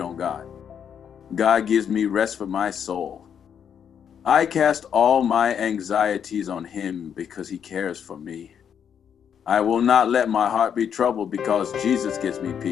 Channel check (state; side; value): quieter; right; 8.1 dB